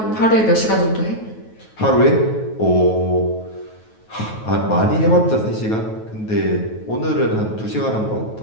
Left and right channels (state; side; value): late; right; 9.3 ms